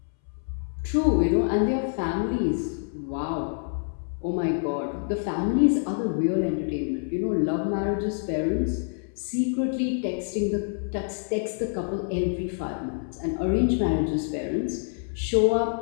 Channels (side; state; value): right; silent; 60 dB below the other